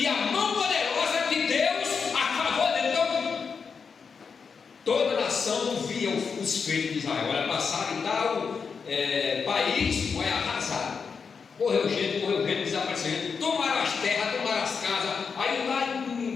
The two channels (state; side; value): quieter; right; 5.7 dB